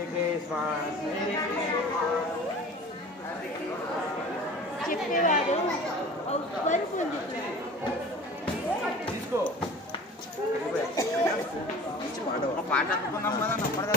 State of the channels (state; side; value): normal; both; correlation 0.41